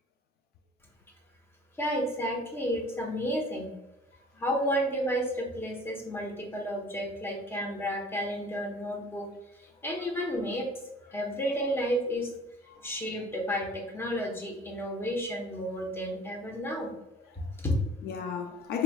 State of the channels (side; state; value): both; normal; correlation 0.49